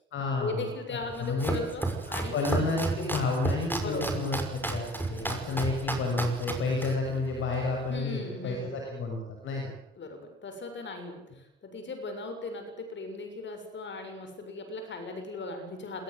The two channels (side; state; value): both; normal; correlation 0.48